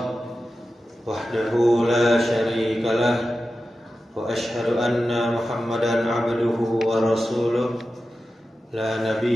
wahdahu la syarikalah wa asyhadu anna Muhammadan abduhu wa rasuluh la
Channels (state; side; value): normal; both; correlation 0.93